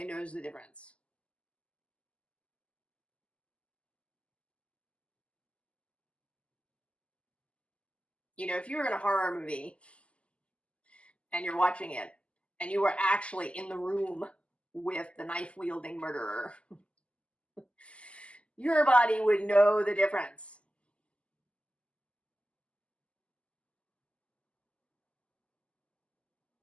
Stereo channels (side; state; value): right; late; 0.058 ms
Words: knows the difference. You know, if you were in a horror movie and you're watching it and you were actually in the room with the knife-wielding murderer, your body would know the difference.